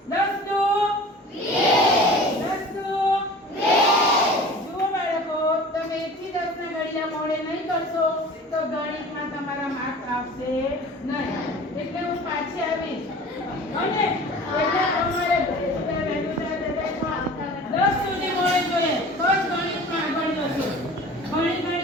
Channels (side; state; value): both; normal; correlation 0.41